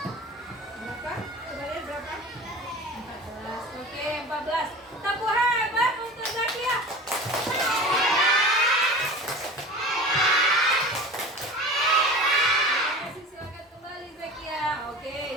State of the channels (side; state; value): both; normal; correlation 0.35